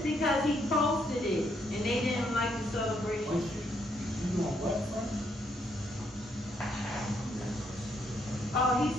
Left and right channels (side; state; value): both; normal; correlation 0.74